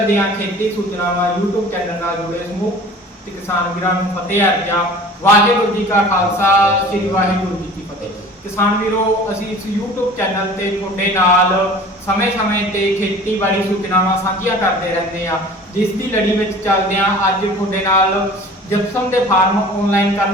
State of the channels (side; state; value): both; normal; correlation 0.44